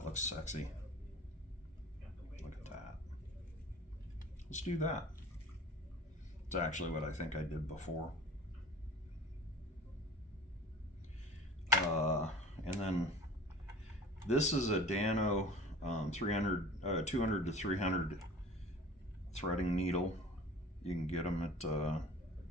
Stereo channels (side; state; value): both; normal; correlation 0.43